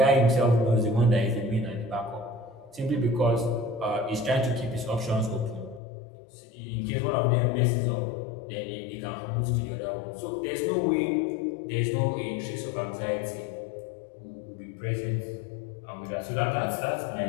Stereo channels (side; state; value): right; drops out; at 5.8 s